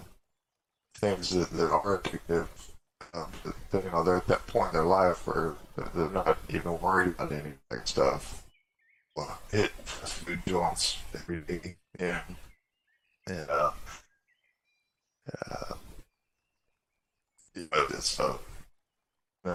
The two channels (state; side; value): identical; both; correlation 1.00